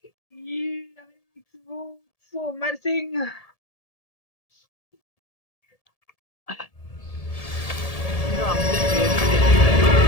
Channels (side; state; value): right; late; 1.7 ms